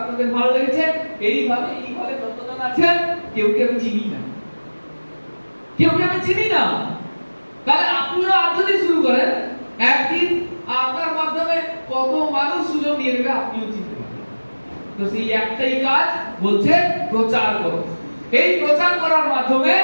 তাদের ভালো লেগেছে, এইভাবে যতজন আছেন, কেউকে আমি চিনি না, কেউকে আমি চিনি না। তাহলে আপনিও আজ যদি শুরু করেন, একদিন আপনার মাধ্যমে কত মানুষ সুযোগ নিয়ে নেবে, আপনিও চিনতে পারবেন। তো সেই একটাই কাজ বলছে প্রচার করো। এই প্রচার করার মাধ্যমে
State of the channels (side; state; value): both; inverted; correlation -1.00